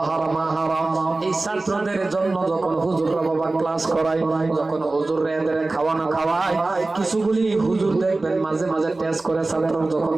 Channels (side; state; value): left; quieter; 3.2 dB